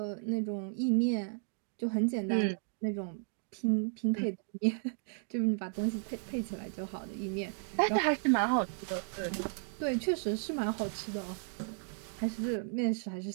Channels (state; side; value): silent; left; 55 dB below the other